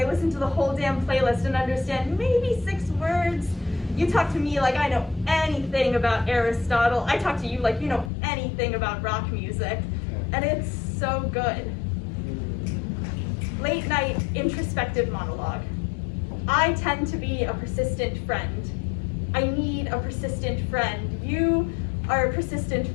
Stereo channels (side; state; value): right; drops out; at 8.1 s